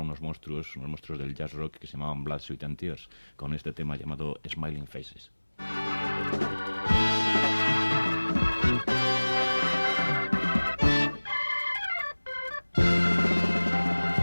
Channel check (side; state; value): both; inverted; correlation -1.00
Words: monstruos del jazz rock que se llamaban Blood, Sweat and Tears, con este tema llamado Smiling Faces.